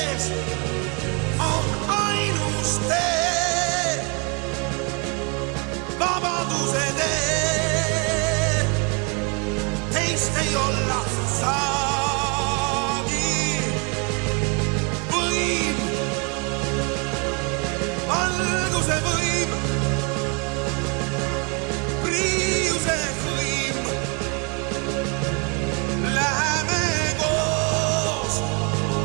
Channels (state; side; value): quieter; left; 33.8 dB